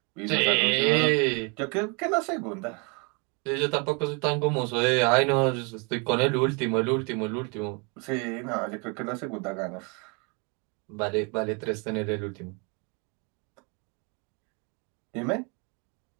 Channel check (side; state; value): left; quieter; 32.8 dB